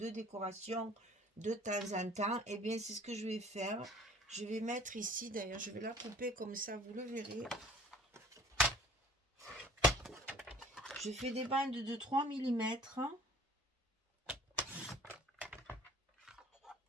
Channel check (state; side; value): normal; both; correlation 0.51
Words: décoration de temps en temps. Et bien, c'est ce que je vais faire. Je vais mettre ici, d'ailleurs, je vais la couper comme ça, vous le verrez. Je fais des bandes de 3 mm.